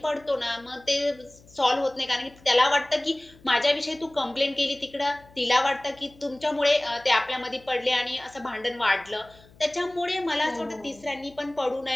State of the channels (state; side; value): noise; left; hum, 26 dB below the sound